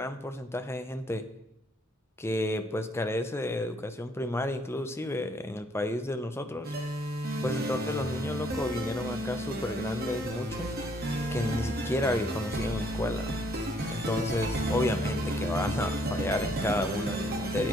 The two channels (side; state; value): both; normal; correlation 0.67